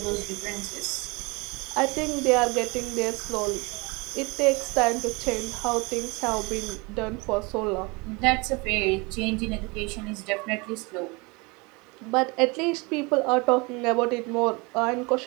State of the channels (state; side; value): quieter; left; 27.2 dB